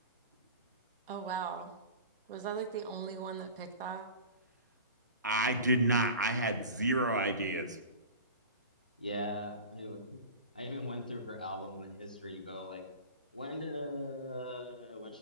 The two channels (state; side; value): inverted; both; correlation -0.35